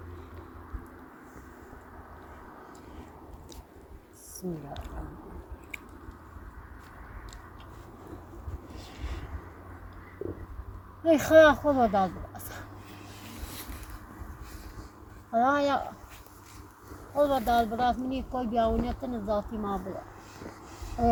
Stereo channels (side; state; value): both; identical; correlation 1.00